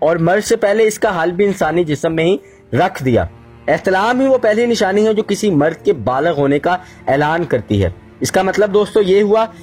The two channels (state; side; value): identical; both; correlation 1.00